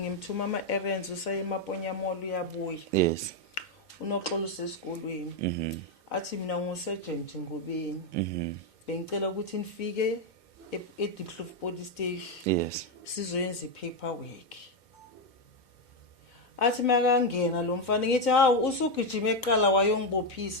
ama errands usaye eMaponya Mall uyabuya yes uNoxolo usesikolweni athi mina ngusergeant Ngobeni bengicela ukuthi nifike eDiepkloof police station yes sizoyenza ipaperwork athi makangena lo mfana ngithi hawu usugijima eqala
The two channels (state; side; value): late; right; 2.2 ms